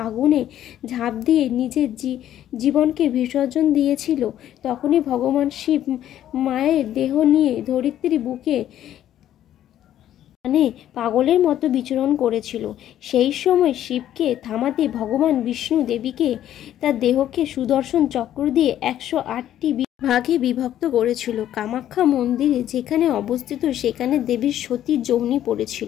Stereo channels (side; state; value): right; quieter; 11.7 dB